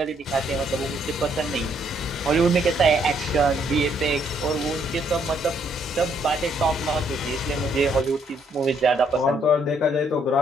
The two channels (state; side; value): normal; both; correlation 0.70